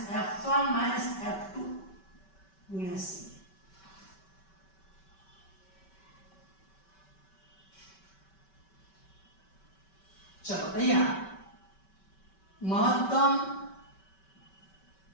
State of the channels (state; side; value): late; right; 5.2 ms